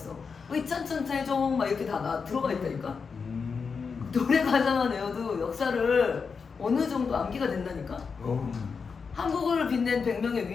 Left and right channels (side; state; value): right; quieter; 5.4 dB